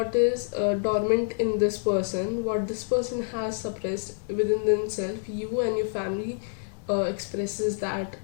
is dormant in this person, what this person has suppressed within themselves, you and your family expresses that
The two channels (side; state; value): right; silent; digital silence